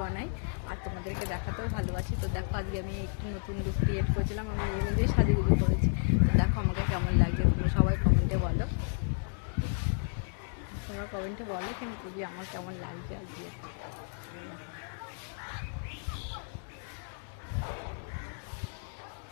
বানাই আর তোমাদেরকে দেখাতেও ভালোবাসি। তো দেখো আজকে আমি একটু নতুন লুক ক্রিয়েট করেছিলাম, আমি নিজেই সাজুগুজু করেছি। দেখো আমাকে কেমন লাগছে, তুমি সবাই কমেন্টে বলো, তোমরা কমেন্টে বলো কিন্তু যে আমার কেমন লাগছে আজকে।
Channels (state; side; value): silent; right; 56 dB below the other